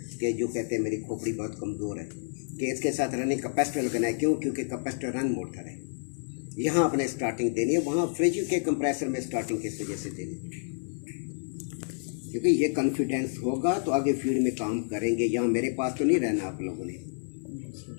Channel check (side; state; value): right; silent; 55 dB below the other